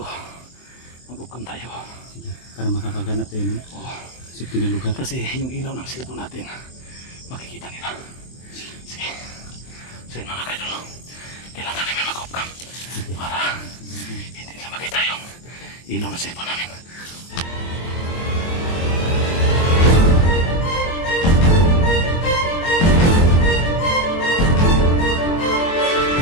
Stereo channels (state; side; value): late; right; 23 ms